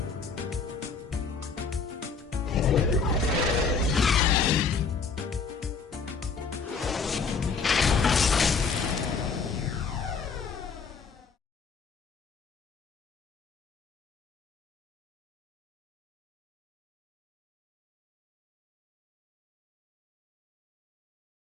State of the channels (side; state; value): right; quieter; 5.1 dB